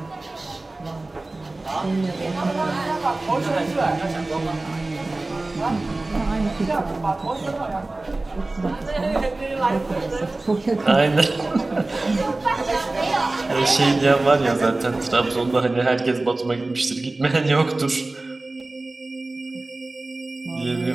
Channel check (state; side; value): quieter; left; 3.0 dB